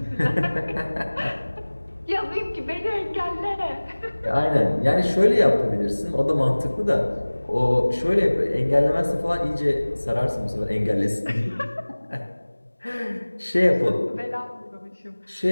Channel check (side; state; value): both; inverted; correlation -1.00